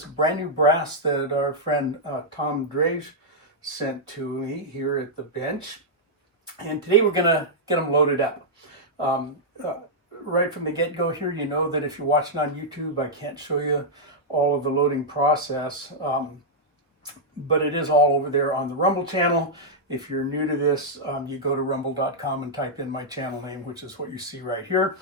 brand new brass that our friend Tom Drage sent to me here at the bench. And today we're going to get them loaded up. Right from the get-go here, you know that if you're watching on YouTube, I can't show you all of the loading process, but it is all over there on the Rumble channel. If you're new to this, you go to rumble.com and type in my channel name, which is what you see right here,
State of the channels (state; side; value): normal; both; correlation -0.07